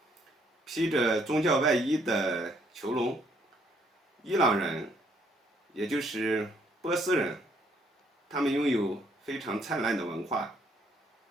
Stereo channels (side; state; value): both; normal; correlation 0.68